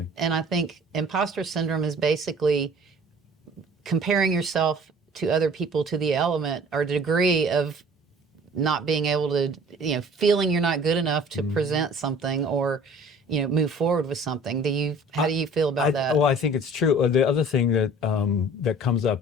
And I think imposter syndrome is basically comparing yourself to other people to the element or degree of not being able to, feeling you're not good enough to present something or, move forward with something. How do you feel about that? Well, I think it's true. The other thing that comes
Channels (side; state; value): both; normal; correlation 0.49